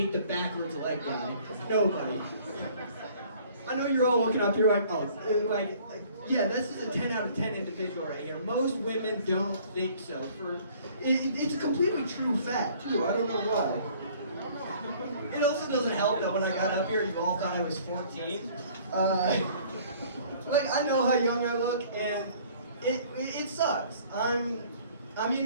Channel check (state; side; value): inverted; both; correlation -0.55